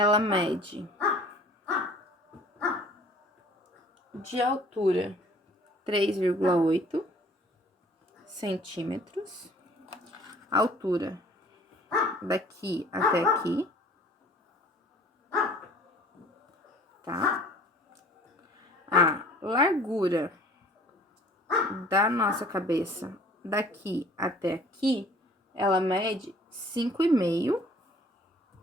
mede de altura 3,8 centímetros, altura daqui até aqui, tá? A largura da nossa cabeça daqui até aqui, ela mede 5,5.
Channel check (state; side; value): normal; both; correlation 0.51